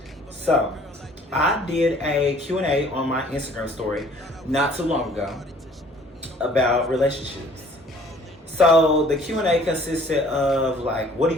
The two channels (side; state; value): both; normal; correlation 0.55